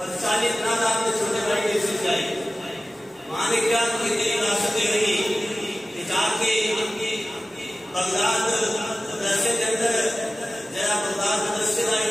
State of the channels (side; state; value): both; normal; correlation 0.96